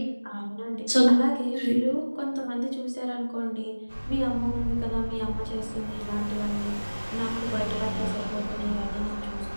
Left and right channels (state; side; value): inverted; both; correlation -1.00